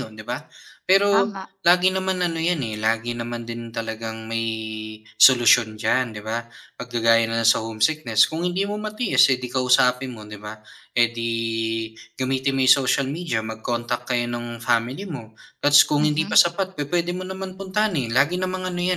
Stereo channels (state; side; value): identical; both; correlation 1.00